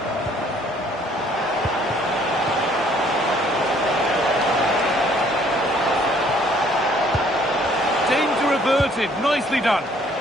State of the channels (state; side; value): normal; both; correlation 0.61